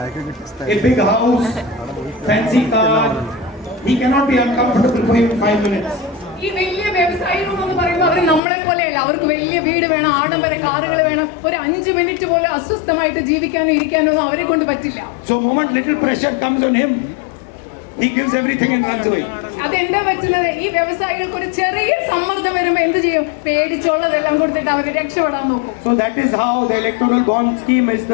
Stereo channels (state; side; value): drops out; right; at 8.4 s